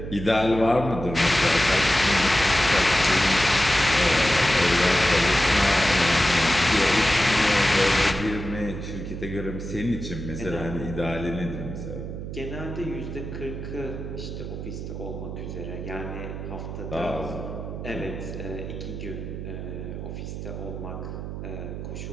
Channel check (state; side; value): noise; right; hum, 7 dB below the sound